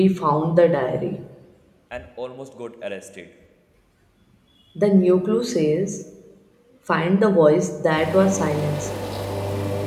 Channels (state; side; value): identical; both; correlation 1.00